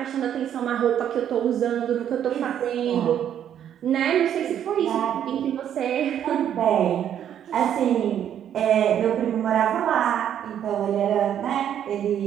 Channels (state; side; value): quieter; left; 9.8 dB